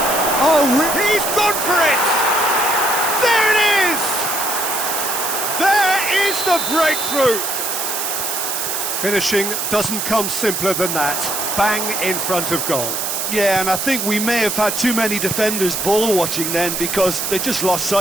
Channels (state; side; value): noise; right; hiss, 2 dB below the sound